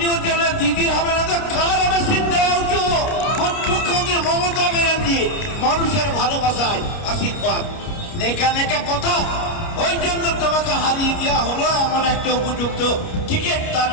উঠে দিদির হবে না, তো কার হবে সিদ্ধারা উঁচু? মুখ্যমন্ত্রী মমতা ব্যানার্জি মানুষের ভালোবাসায় আশীর্বাদ, নেকা নেকা কথা। ওই জন্য তোমাকে হারিয়ে দেওয়া হলো এমন একটা উপযুক্ত ক্রিকেট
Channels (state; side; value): late; right; 29 ms